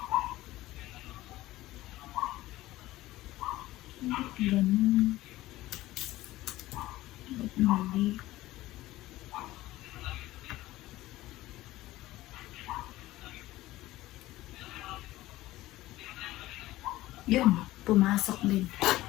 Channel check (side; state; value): right; quieter; 16.8 dB